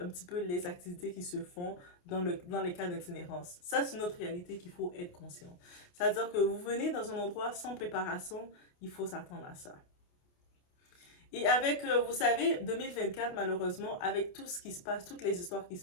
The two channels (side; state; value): right; late; 28 ms